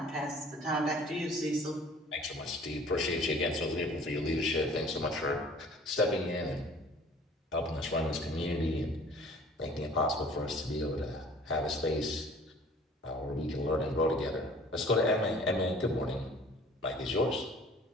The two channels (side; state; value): both; normal; correlation 0.50